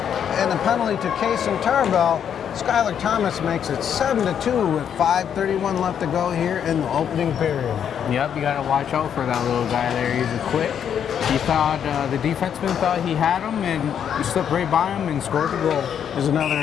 and the penalty to Case and Tarbell. Skylar Thomas makes it 7-2 with 5:31 left to go here in the opening period. Yep, you got to watch out for that little guy there. He's a quick. He thought, the defenseman thought he had him, and he slipped right by him and scored the goal. There's another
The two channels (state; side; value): quieter; right; 8.5 dB